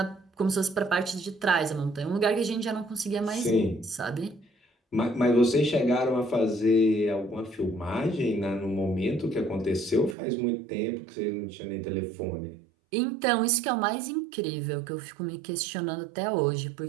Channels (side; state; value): left; drops out; at 10.2 s